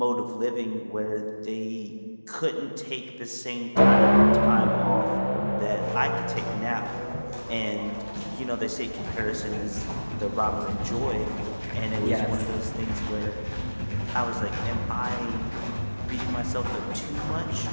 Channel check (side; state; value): both; inverted; correlation -1.00